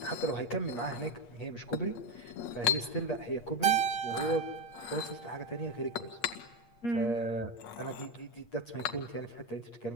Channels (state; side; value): late; right; 8.4 ms